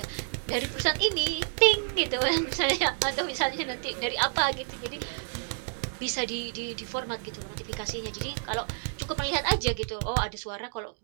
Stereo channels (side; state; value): left; silent; digital silence